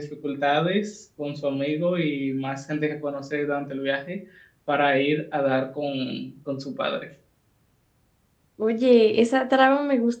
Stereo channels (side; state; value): both; identical; correlation 1.00